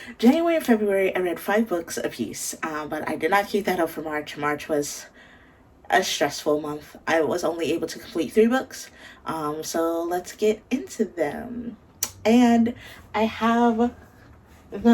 January and February, I read 5 books apiece, but I did not keep that up for March. March was a stressful month. I was only able to complete 3 books, so let's get into them. And I have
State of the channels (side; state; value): both; identical; correlation 1.00